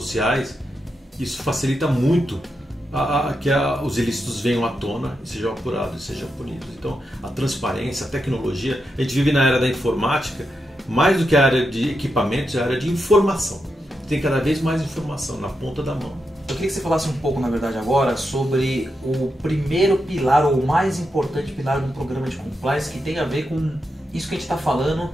isso facilita muito que os ilícitos venham à tona e sejam apurados e sejam punidos. Então, a transparência, a tecnologia, a gente vive na era da informática, mais do que a área de equipamentos, é a área de informação. Tem cada vez mais informação na ponta da mão. Eu queria que você falasse um pouco, na verdade, agora sobre o primeiro pilar, ou o mais importante pilar de um programa de compliance, que tem a ver com isso que a gente está falando,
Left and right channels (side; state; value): both; normal; correlation 0.86